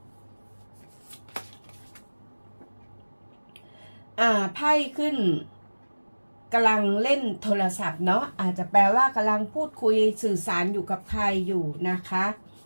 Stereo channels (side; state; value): both; inverted; correlation -1.00